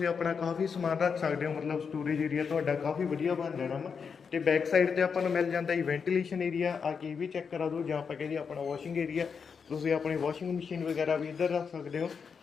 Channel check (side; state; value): right; quieter; 6.0 dB